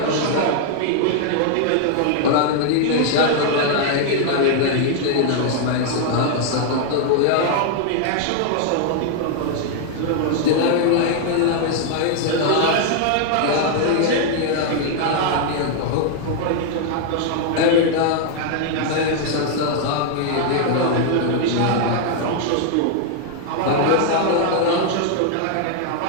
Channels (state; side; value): different; both; correlation 0.00